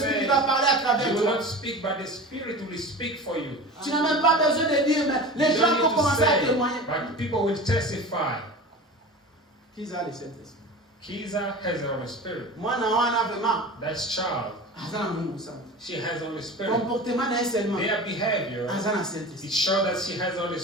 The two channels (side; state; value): both; normal; correlation 0.34